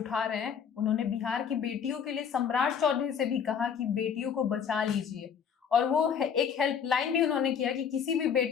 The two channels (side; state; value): right; quieter; 7.4 dB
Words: रहे हैं। उन्होंने बिहार की बेटियों के लिए सम्राट चौधरी से भी कहा कि बेटियों को बचा लीजिए, और वो एक हेल्पलाइन भी उन्होंने किया कि किसी भी